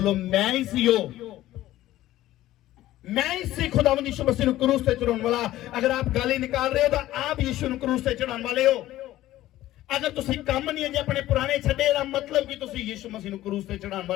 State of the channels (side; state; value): right; quieter; 14.9 dB